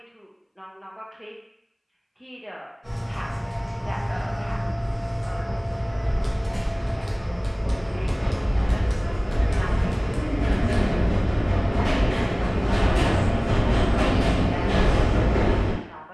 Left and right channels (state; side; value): identical; both; correlation 1.00